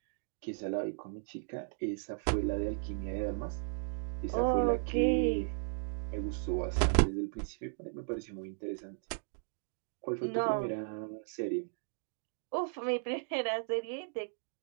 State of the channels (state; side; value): silent; left; digital silence